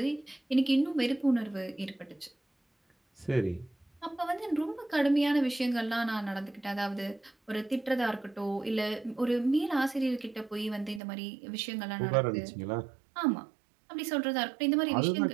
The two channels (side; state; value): left; drops out; at 11.0 s